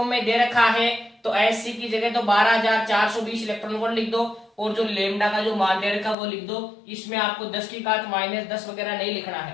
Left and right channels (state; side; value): drops out; right; at 6.2 s